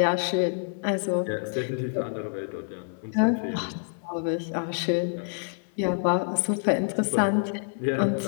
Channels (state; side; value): silent; right; digital silence